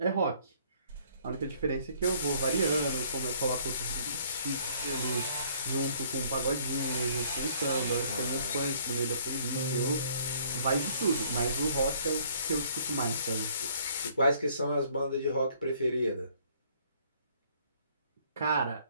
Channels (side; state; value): both; inverted; correlation -0.60